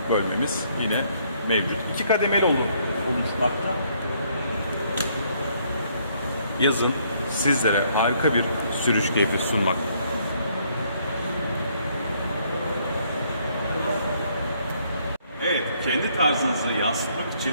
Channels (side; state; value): both; inverted; correlation -0.68